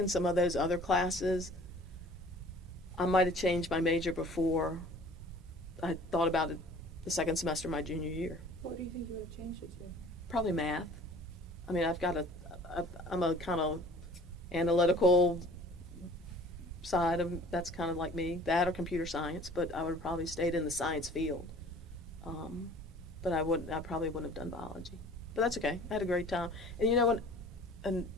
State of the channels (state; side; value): normal; both; correlation 0.48